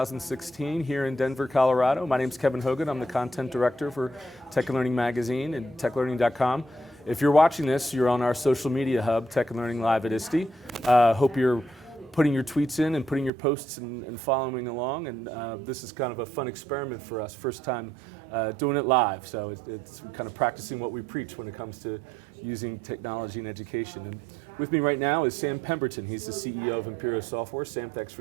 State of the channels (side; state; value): left; drops out; at 13.3 s